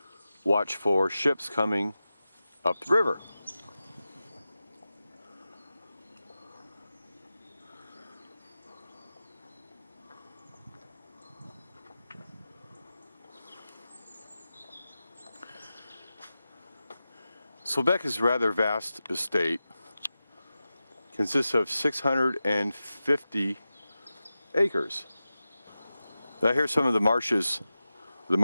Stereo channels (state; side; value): inverted; both; correlation -0.94